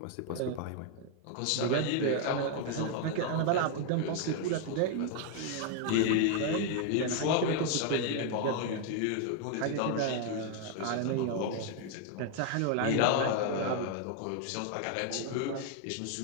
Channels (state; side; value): different; both; correlation 0.00